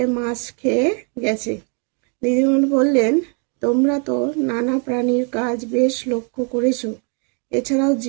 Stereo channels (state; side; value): quieter; left; 37.3 dB